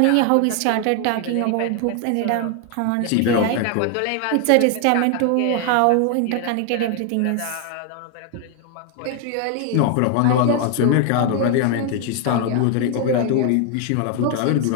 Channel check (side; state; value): both; different; correlation 0.00